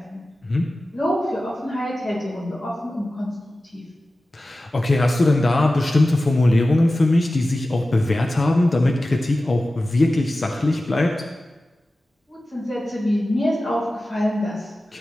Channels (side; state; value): both; normal; correlation 0.95